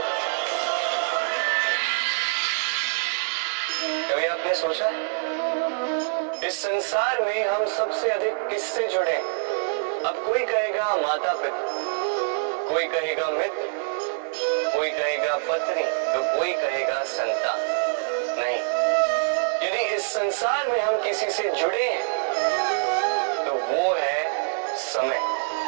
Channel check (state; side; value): silent; left; digital silence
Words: कभी आपने सोचा इस संसार में हम सबसे अधिक किससे जुड़े? अब कोई कहेगा माता पिता, कोई कहेगा मित्र, कोई कहेगा पत्नी, तो कोई कहेगा संतान। नहीं, यदि इस संसार में हम किसी से जुड़े हैं तो वो है समय।